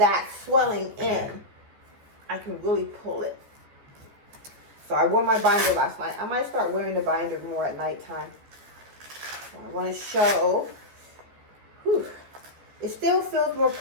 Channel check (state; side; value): late; left; 14 ms